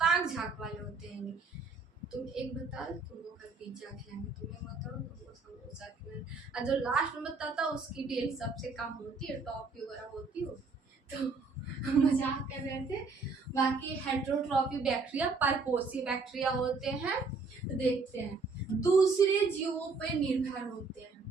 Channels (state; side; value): quieter; left; 4.2 dB